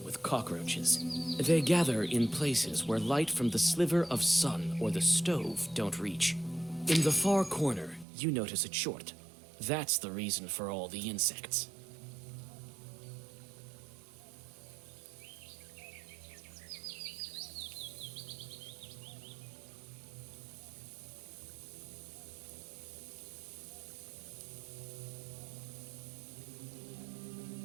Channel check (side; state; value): left; drops out; at 8.1 s